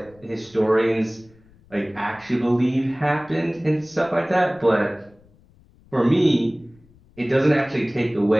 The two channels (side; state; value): left; noise; rumble, 29 dB below the sound